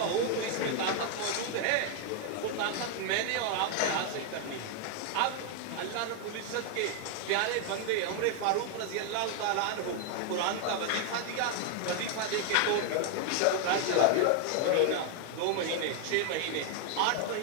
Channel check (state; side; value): different; both; correlation 0.00